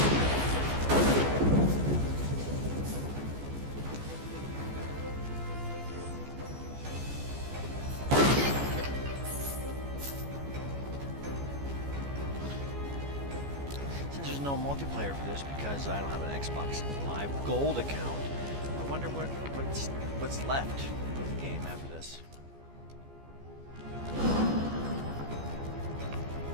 Since there's no multiplayer for this because I don't have an Xbox Live Gold account, I wonder what's left of the game after this.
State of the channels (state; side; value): late; left; 14 ms